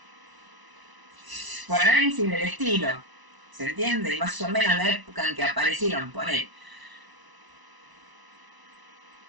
por análisis del estilo, ¿se entiende? Y más o menos la época en que aparecieron, poner.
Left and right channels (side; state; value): left; late; 1.0 ms